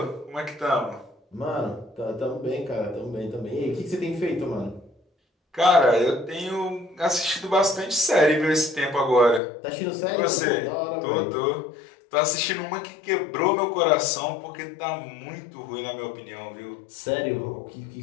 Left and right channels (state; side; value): drops out; right; at 9.4 s